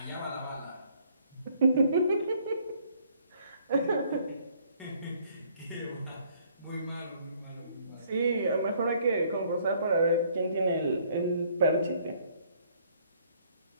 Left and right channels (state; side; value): inverted; both; correlation -0.63